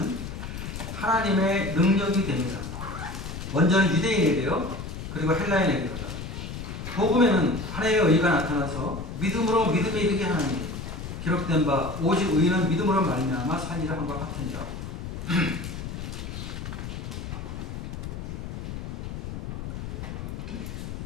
하나님의 능력이 됩니다. 먼저는 유대인에게요, 그리고 헬라인에게로다. 복음에는 하나님의 의가 나타나서 믿음으로 믿음에 이르게 하나니 기록된 바 오직 의인은 믿음으로 말미암아 살리라 함과 같으니라.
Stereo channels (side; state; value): left; noise; rumble, 7 dB below the sound